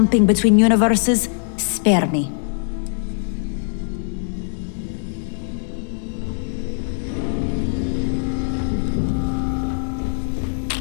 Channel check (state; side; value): silent; right; digital silence